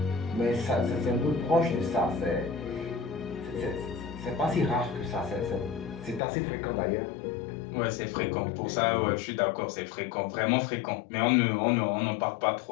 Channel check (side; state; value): right; drops out; at 6.2 s